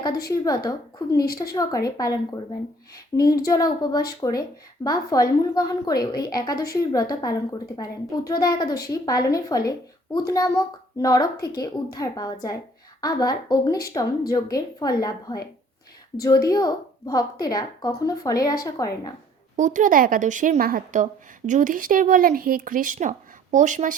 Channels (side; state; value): both; normal; correlation 0.56